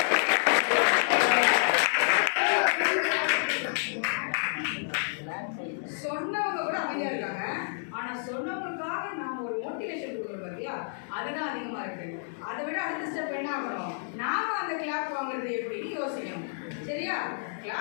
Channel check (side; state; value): right; silent; digital silence